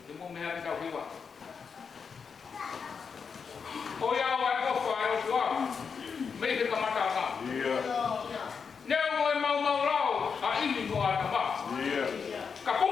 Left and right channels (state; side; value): quieter; right; 6.0 dB